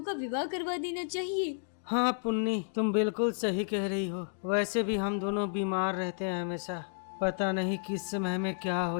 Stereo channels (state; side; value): silent; right; digital silence